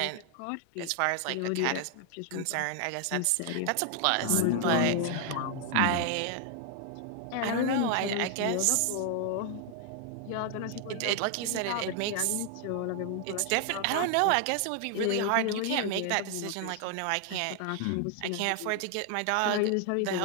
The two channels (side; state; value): both; different; correlation 0.00